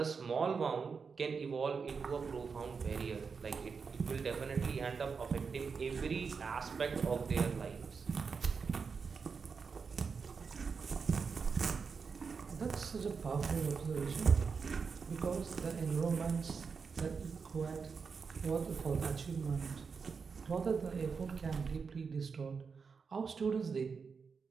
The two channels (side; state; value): left; quieter; 5.4 dB